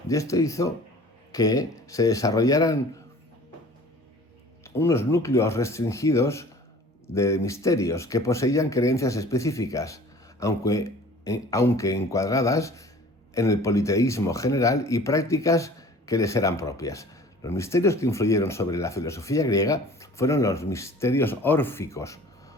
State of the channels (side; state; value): both; normal; correlation 0.47